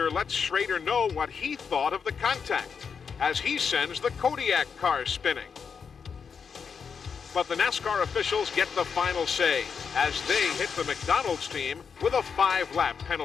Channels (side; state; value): right; quieter; 6.2 dB